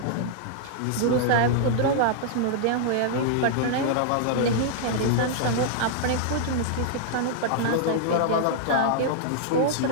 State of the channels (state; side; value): different; both; correlation -0.01